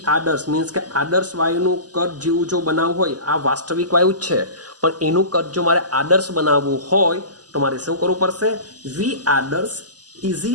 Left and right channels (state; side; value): late; left; 0.68 ms